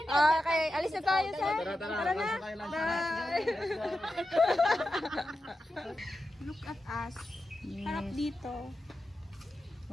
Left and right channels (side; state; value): both; normal; correlation 0.90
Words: Okay, alis na tayo, sir. Tara na. Bye. Look at us. Harap dito.